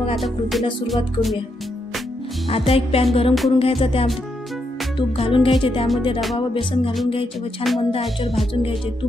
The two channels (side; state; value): both; normal; correlation 0.80